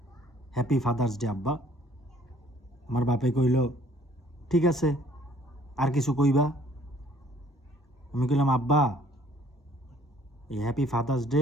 happy Father's Day আব্বা। আমার বাপে কইল ঠিক আছে, আর কিছু কইবা? আমি কইলাম, আব্বা এই হ্যাপি ফাদার্স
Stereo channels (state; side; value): normal; both; correlation 0.58